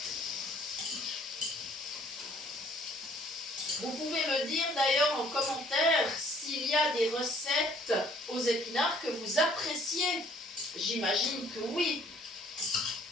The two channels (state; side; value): normal; both; correlation 0.59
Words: Vous pouvez me dire d'ailleurs en commentaire s'il y a des recettes aux épinards que vous appréciez. J'imagine que oui.